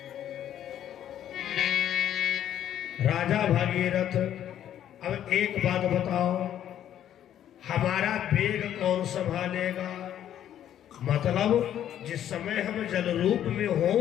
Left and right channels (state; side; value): quieter; right; 10.8 dB